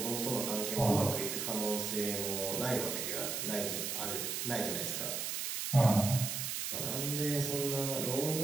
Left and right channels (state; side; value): noise; right; hiss, 2 dB below the sound